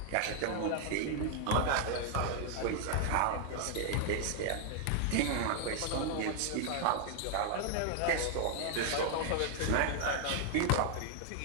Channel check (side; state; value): both; different; correlation 0.00